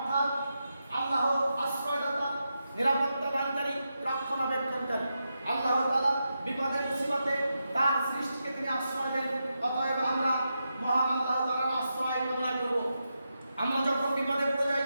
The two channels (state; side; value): inverted; both; correlation -0.87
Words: আল্লাহ আশ্রয়দাতা, নিরাপত্তা দানকারী, রক্ষণাবেক্ষণকারী। আল্লাহ তাআলা বিপদে মুসিবতে তার সৃষ্টিকে তিনি আশ্রয় দেন। অতএব আমরা মহান আল্লাহ তাআলার আশ্রয় কামনা করব। আমরা যখন বিপদে পড়ে যাই,